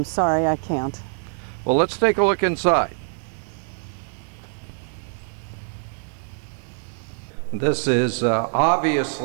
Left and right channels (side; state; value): left; silent; 62 dB below the other